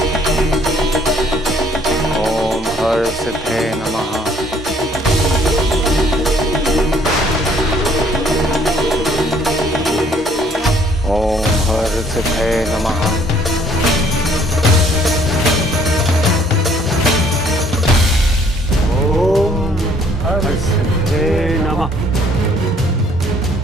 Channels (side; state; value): both; normal; correlation 0.61